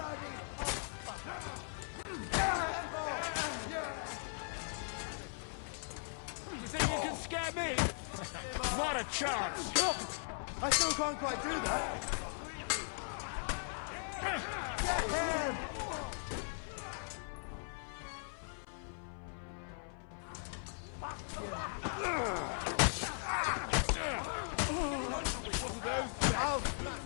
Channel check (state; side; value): silent; right; 52 dB below the other